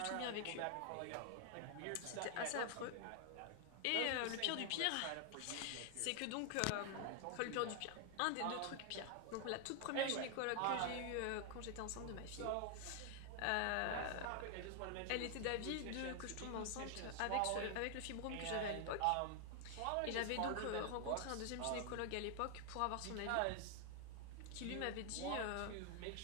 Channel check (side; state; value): both; different; correlation 0.00